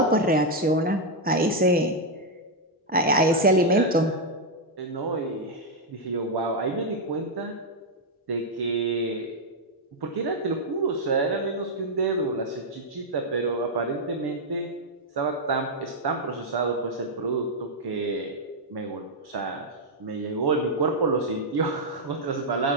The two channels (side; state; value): both; normal; correlation -0.01